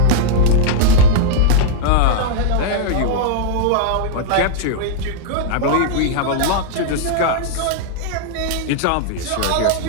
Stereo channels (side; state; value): both; different; correlation -0.01